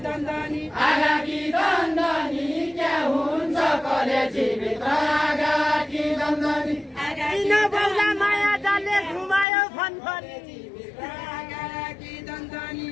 दन्दनी आगाकी दन्दनी क्या हुन्छ कलेजी भित्र आगाकी दन्दनी किन बौला माया जाले घुमायो फनफनी आगाकी दन्दनी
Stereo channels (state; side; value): drops out; right; at 9.5 s